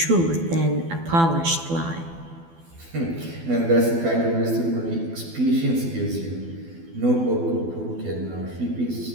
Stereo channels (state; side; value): late; left; 12 ms